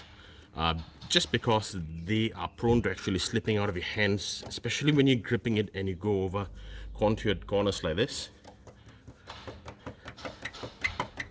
just because they are prone to actually slipping out of your hands, especially when you're gripping it and you go over contoured corners like this.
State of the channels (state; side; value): identical; both; correlation 1.00